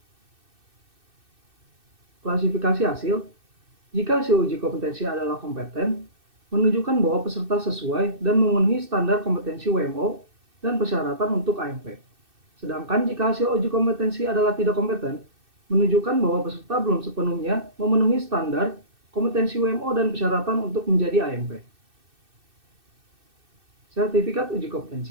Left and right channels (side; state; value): left; late; 2.6 ms